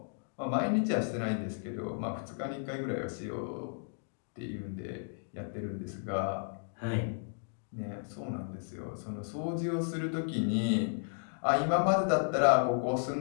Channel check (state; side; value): silent; right; digital silence